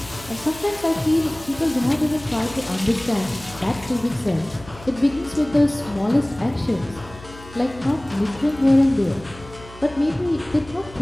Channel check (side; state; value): left; noise; hum, 19 dB below the sound